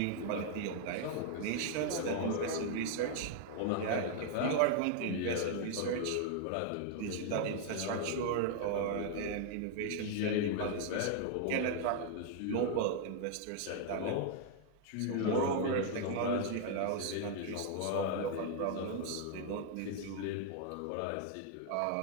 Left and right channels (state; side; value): different; both; correlation 0.00